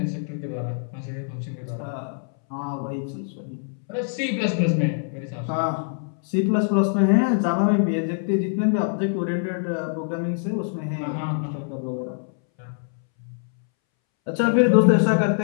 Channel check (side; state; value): right; silent; 62 dB below the other